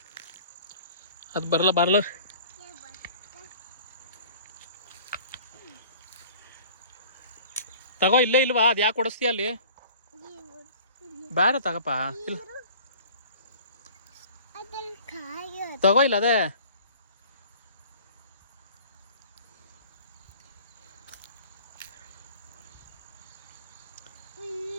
ಅದು ಬರಲ್ಲ. ತಗೋ, ಇಲ್ಲೇ ಇಲ್ವಾ? ಅದು ಯಾಕೆ ಕೊಡಿಸ್ತೀಯ ಅಲ್ಲಿ? ಬೇಡ ತಗಪ್ಪ. ಇಲ್ಲ ತಗೋ, ಇಲ್ಲ ಅದೇ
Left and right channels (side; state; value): both; inverted; correlation -0.47